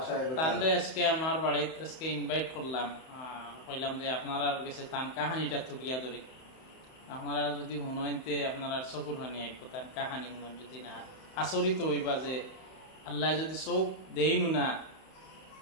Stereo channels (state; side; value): late; right; 31 ms